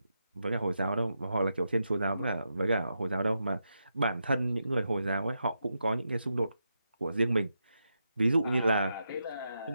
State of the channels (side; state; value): both; inverted; correlation -0.85